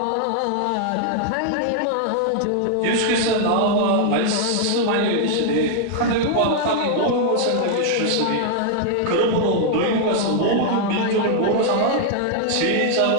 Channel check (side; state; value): both; different; correlation 0.00